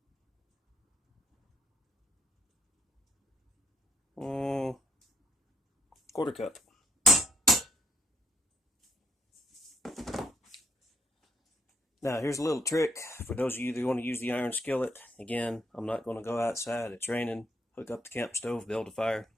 Mm, quarter cup. Now here's a little trick for those of you that want to use the iron skillet. Again, I'm not going to go outside. It's raining. Hook up the camp stove, build a fire.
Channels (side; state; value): both; normal; correlation 0.71